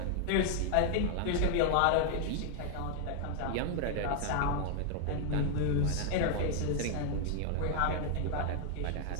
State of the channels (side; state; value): both; different; correlation 0.00